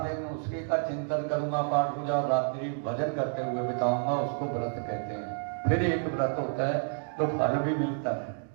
उसके का चिंतन करूंगा, पाठ पूजा और रात्रि भजन करते हुए बिताऊंगा, उसको व्रत कहते हैं। फिर एक व्रत होता है तो फल भी मिलता है।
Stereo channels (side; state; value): left; silent; digital silence